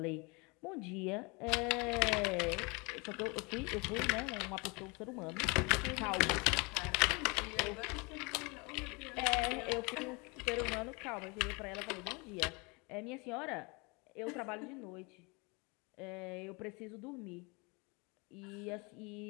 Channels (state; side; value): quieter; right; 28.7 dB